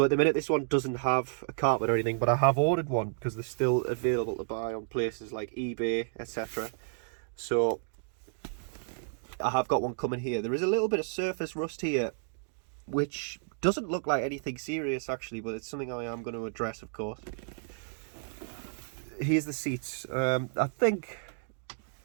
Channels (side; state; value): left; silent; digital silence